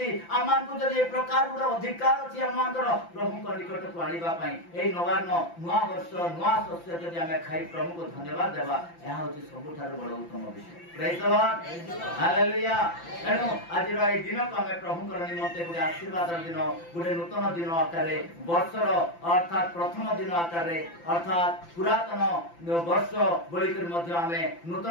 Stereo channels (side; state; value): right; late; 5.9 ms